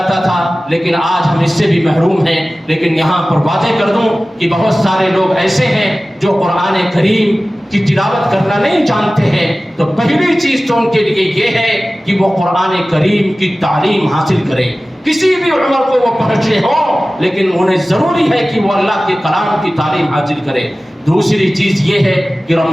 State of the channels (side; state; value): both; normal; correlation 0.96